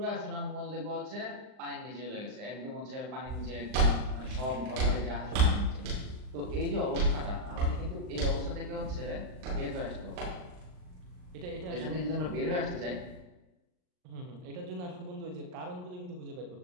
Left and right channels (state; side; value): late; left; 39 ms